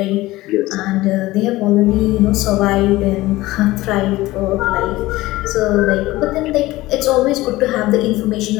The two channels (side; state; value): right; quieter; 18.2 dB